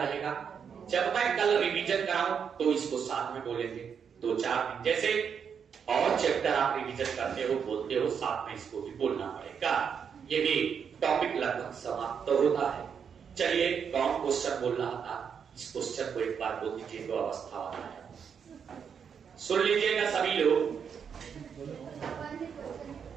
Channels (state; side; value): quieter; left; 7.1 dB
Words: जब मैं कल रिवीजन कराऊं तो इसको साथ में बोलेंगे 2-4 दिन। जैसे और चैप्टर आप रिवीजन करते हो, बोलते हो, साथ में इसको भी बोलना पड़ेगा। ये भी टॉपिक लगभग समाप्त तो होता है। चलिए, कौन क्वेश्चन बोल रहा था? इस क्वेश्चन को एक बार बोल दीजिए। तो अवस्था वाला है, सुन लीजिएगा सभी लोग।